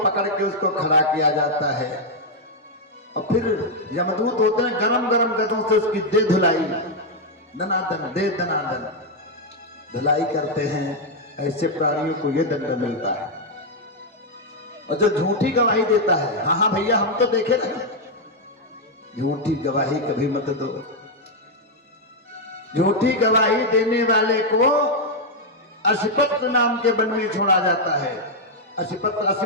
के उसको खड़ा किया जाता है और फिर यमदूत होते हैं, गरम गरम गदों से उसकी दे धुलाई, दनादन दे दनादन धुलाई करते हैं। ऐसे प्राणियों को यह दंड मिलता है। और जो झूठी गवाही देता है, हाँ हाँ भैया हम तो देखे ना, झूठी गवाही कभी मत दो। झूठी गवाही देने वाले को असिपत्र नाम के वन में छोड़ा जाता है। असिपत्र,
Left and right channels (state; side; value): normal; both; correlation -0.01